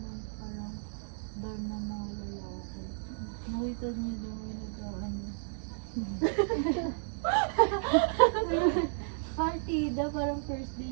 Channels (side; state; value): left; silent; digital silence